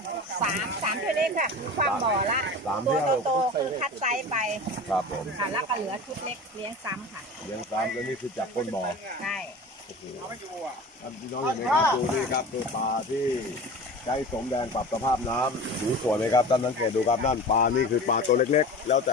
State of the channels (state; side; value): normal; both; correlation 0.35